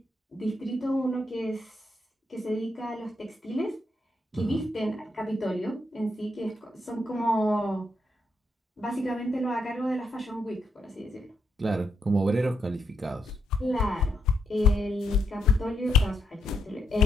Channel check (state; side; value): normal; both; correlation 0.78